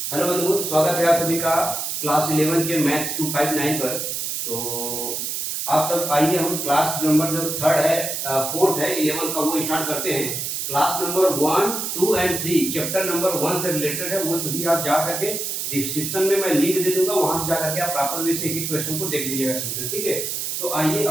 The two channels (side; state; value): right; noise; hiss, 3 dB below the sound